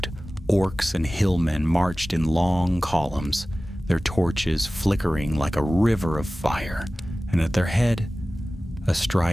Orcs and hillmen marched in long columns, their torches flickering like a river of fire, and at their head,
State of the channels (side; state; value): both; normal; correlation 0.97